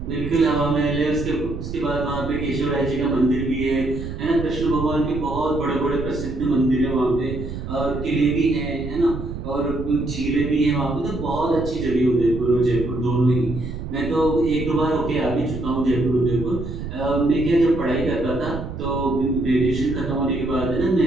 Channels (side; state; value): right; noise; rumble, 7 dB below the sound